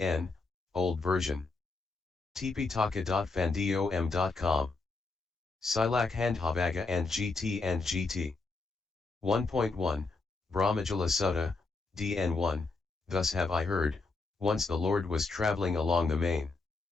Old Version. tptaka.fandom.com. Silak Handhavaga and GT. 1.1, Brahmajala Sutta, DN1, Thus have I heard, once the Lord was travelling along the main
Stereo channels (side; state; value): right; quieter; 3.8 dB